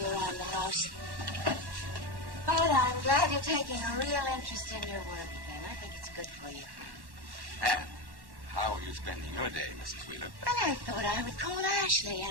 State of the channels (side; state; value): left; late; 1.1 ms